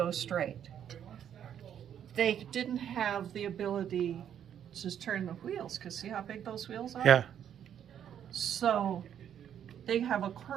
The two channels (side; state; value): left; quieter; 9.4 dB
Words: straight. They didn't have the ability to just turn the wheels, because see how big those wheels are? Yeah. So they have a